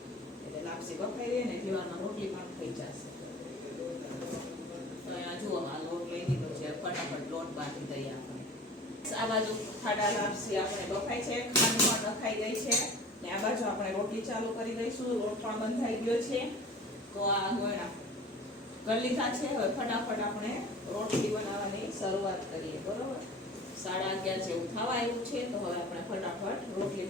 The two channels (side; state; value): both; normal; correlation 0.41